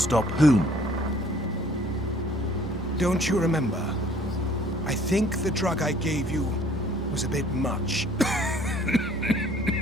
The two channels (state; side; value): normal; both; correlation 0.56